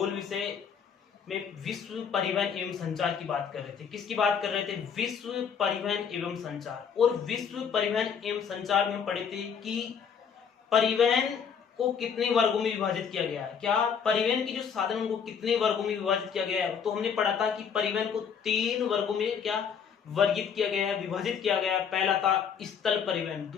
विषय में विश्व परिवहन एवं संचार की बात कर रहे थे। किसकी बात कर रहे थे? विश्व परिवहन एवं संचार। और विश्व परिवहन एवं संचार में हम पढ़े थे कि परिवहन को कितने वर्गों में विभाजित किया गया है। क्या परिवहन की जो साधनों को कितने वर्गों में विभाजित किया गया है? तो हमने पढ़ा था कि परिवहन को 3 वर्गों में क्या वर्गीकृत किया गया है, विभाजित किया गया है। पहला था स्थल परिवहन,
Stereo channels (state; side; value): quieter; right; 7.0 dB